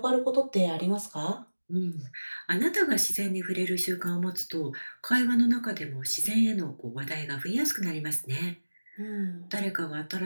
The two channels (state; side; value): inverted; both; correlation -1.00